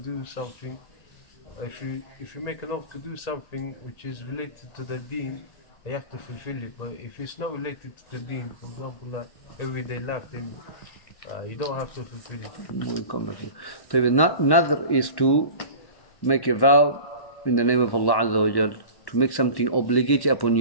something. If you make an oath to do something which is related to the deen, you have to fulfill it. But if it's not related to the deen, for example, everyday life, then you don't have to fulfill it. So nadr is to make a vow in the name of Allah Azza wa Jal, to make something obligatory upon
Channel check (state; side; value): late; right; 1.1 ms